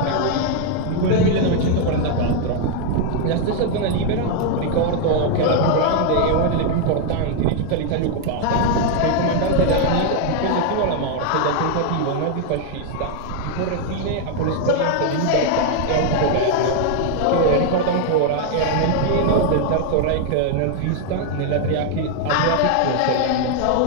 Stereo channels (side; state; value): both; different; correlation 0.00